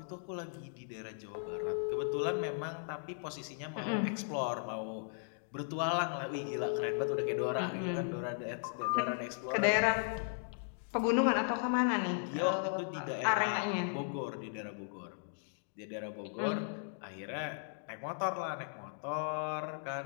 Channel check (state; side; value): silent; right; digital silence